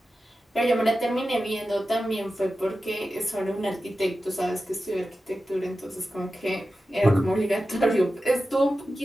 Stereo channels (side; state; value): both; normal; correlation 0.93